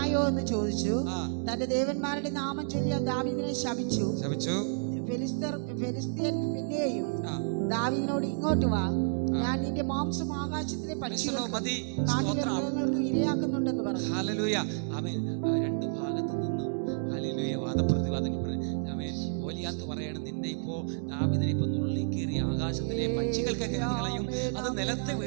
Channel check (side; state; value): left; silent; digital silence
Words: എന്ന് ചോദിച്ചു. തന്റെ ദേവന്മാരുടെ നാമം ചൊല്ലി ദാവീദിനെ ശപിച്ചു. ഫെലിസ്ത്യൻ പിന്നെയും ദാവീദിനോട്, ഇങ്ങോട്ട് വാ, ഞാൻ നിന്റെ മാംസം ആകാശത്തിലെ പക്ഷികൾക്ക് ഇരയാക്കുന്നുണ്ടെന്ന് പറഞ്ഞു. ഹല്ലേലൂയ. ആമേൻ. 2 ഭാഗത്തു നിന്നും ഹല്ലേലൂയ വാദപ്രതിവാദം. ആമേൻ. ഗോലിയാത്ത് പറയണം, നിന്നെ ഇപ്പോ ദാവീദിനെ ഇപ്പൊ നുള്ളിക്കേറി ആകാശത്തിലെ പക്ഷികൾക്ക് കളയും. അത് നിലത്ത്